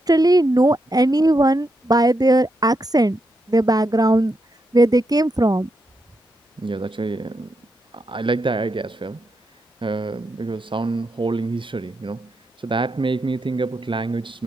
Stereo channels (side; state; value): both; normal; correlation 0.83